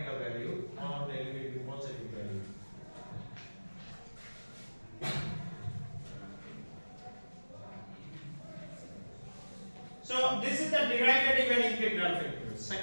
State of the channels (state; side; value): inverted; both; correlation -1.00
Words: value, all value will be positive value. So this is the derivative and integral factors,